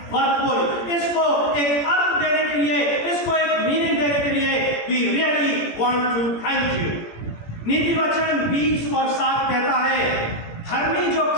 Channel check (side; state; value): right; late; 17 ms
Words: worthful. इसको एक अर्थ देने के लिए, इसको एक मीनिंग देने के लिए we really want to thank you. नीति वचन 20 और 7 कहता है, धर्मी जो